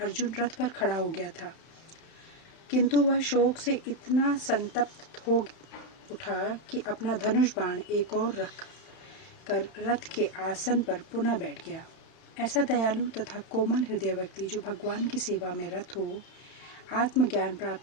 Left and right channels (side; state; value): right; late; 31 ms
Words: अर्जुन रथ पर खड़ा हो गया था, किंतु वह शोक से इतना संतप्त हो उठा कि अपना धनुष बाण एक और रख कर रथ के आसन पर पुनः बैठ गया। ऐसा दयालु तथा कोमल हृदय व्यक्ति जो भगवान की सेवा में रत हो, आत्मज्ञान प्राप्त